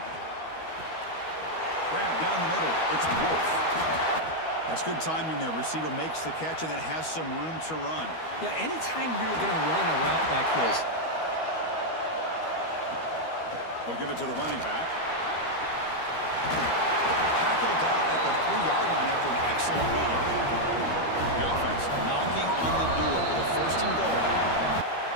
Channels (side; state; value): right; late; 12 ms